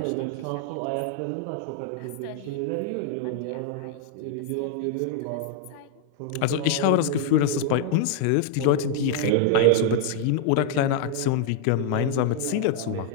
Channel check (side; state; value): both; different; correlation 0.00